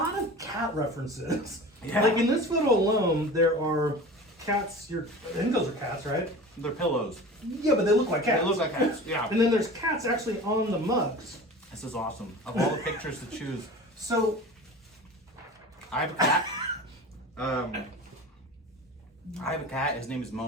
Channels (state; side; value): normal; both; correlation 0.36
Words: of cat references. Yeah. Like in this photo alone, there are cats, I think those are cats, right? They're pillows. Yeah, but they look like cats. They look like cats, yeah. And then there's cats actually on the mugs. This is awesome. Of all the pictures to choose, So, I have a cat. I have a cat. His name is